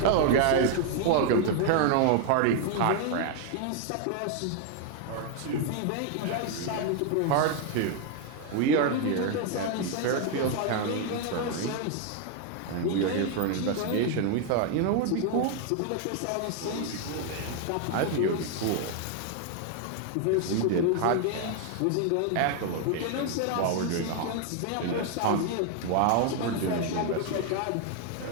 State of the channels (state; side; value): different; both; correlation 0.00